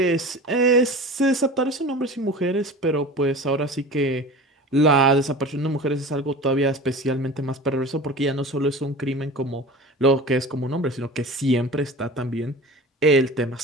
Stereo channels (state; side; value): normal; both; correlation 0.36